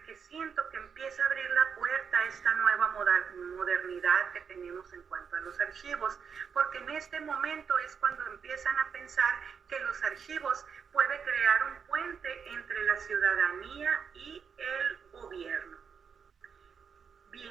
que siento que empieza a abrir la puerta a esta nueva modernidad que tenemos en cuanto a los archivos, porque en este momento es cuando empiezan a pensar que los archivos pueden crear un puente entre la ciudadanía y el gobierno.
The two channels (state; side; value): quieter; left; 6.6 dB